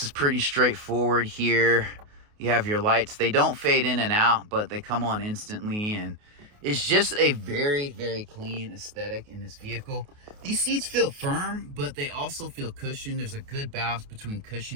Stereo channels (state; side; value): late; left; 28 ms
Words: is pretty straightforward here. You have your lights. They don't fade in and out, but they come on instantly. And it's just a very, very clean aesthetic in this vehicle. These seats feel firm, but they also feel cushioned. There's a good balance between